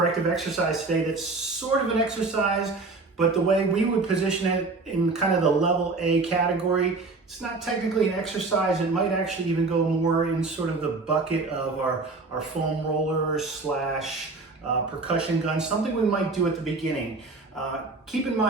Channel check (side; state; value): left; quieter; 3.7 dB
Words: exercise today that's sort of an exercise, but the way we would position it in kind of the level A category, it's not technically an exercise. It might actually even go more in sort of the bucket of our foam rollers slash percussion gun, something we might do at the beginning. Keep in